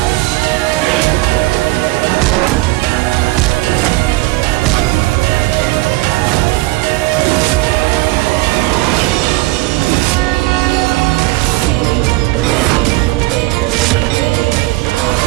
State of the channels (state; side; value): quieter; left; 20.8 dB